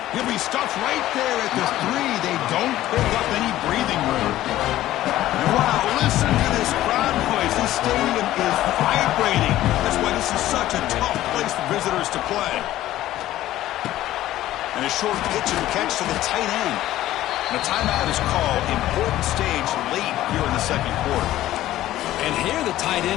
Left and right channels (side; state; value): right; quieter; 14.4 dB